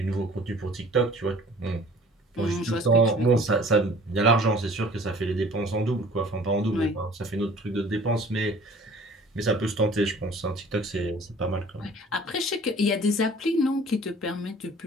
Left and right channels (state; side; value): normal; both; correlation 0.49